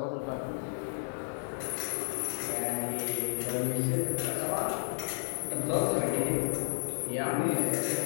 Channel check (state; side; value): silent; right; digital silence